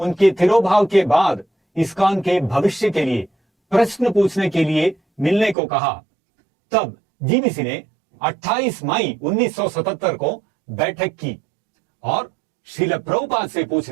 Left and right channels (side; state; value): left; drops out; at 5.6 s